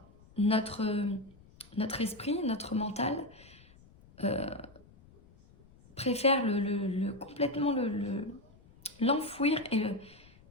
notre esprit, notre mental préfère complètement l'enfouir et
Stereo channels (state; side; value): noise; left; rumble, 25 dB below the sound